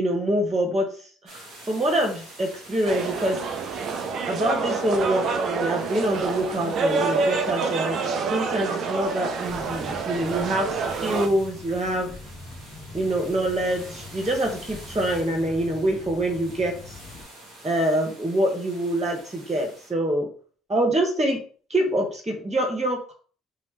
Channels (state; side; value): normal; both; correlation 0.66